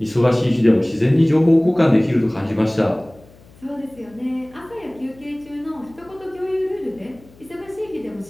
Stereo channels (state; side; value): noise; left; hum, 25 dB below the sound